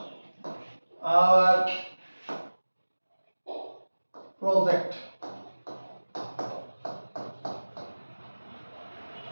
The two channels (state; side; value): inverted; both; correlation -1.00